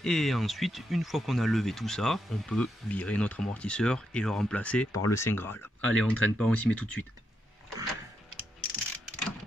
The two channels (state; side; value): normal; both; correlation 0.82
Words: Et ensuite, une fois qu'on a levé tout ça, on peut virer notre amortisseur et le remplacer par le Saint Graal. Allez, on traîne pas, on s'y met tout de suite.